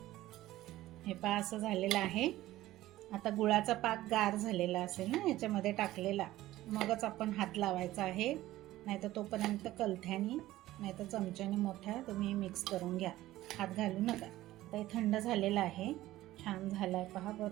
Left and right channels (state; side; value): quieter; left; 15.8 dB